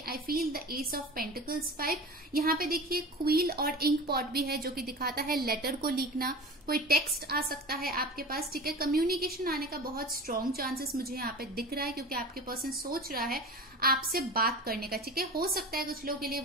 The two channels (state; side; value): normal; both; correlation 0.34